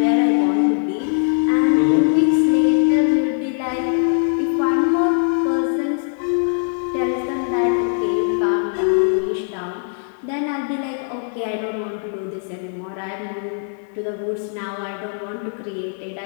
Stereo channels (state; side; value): silent; right; digital silence